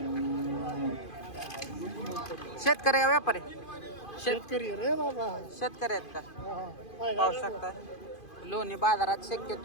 शेतकरी का व्यापारी? शेतकरी रे बाबा. शेतकरी आहेत का? पाहू शकता लोणी बाजारात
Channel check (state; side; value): late; right; 2.5 ms